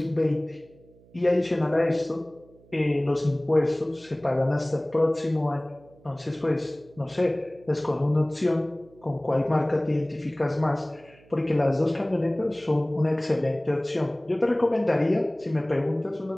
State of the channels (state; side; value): noise; right; hum, 27 dB below the sound